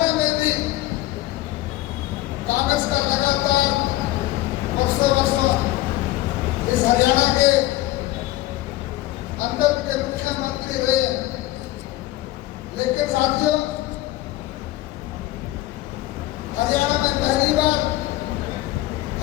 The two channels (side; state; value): right; quieter; 16.8 dB